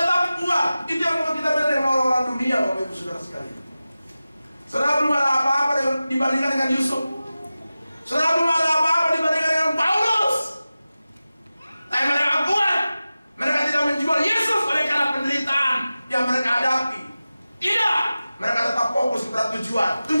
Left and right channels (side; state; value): both; inverted; correlation -0.95